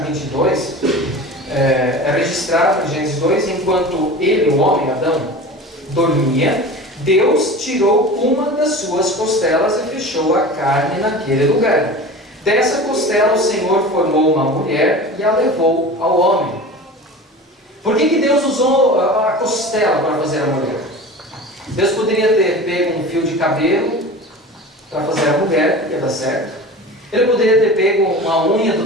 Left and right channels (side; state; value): both; normal; correlation 0.35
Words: 22, é registrado em Gênesis 2, enquanto ele, o homem, Adão, dormia, Deus tirou uma das suas costelas e fechou a carne naquele lugar. Dessa costela o Senhor formou uma mulher e a levou ao homem. Por que Deus usou a costela para fazer a mulher? Deus poderia ter pego um fio de cabelo para fazer a mulher, ia dar certo. Ele poderia ter pego uma unha